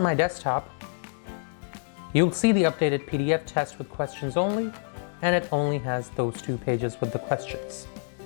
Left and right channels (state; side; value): silent; right; digital silence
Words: my desktop, you'll see the updated PDF test with questions only, and it only has those two pages with the questions.